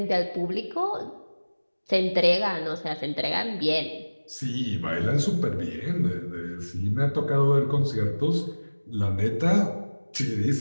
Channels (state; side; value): inverted; both; correlation -1.00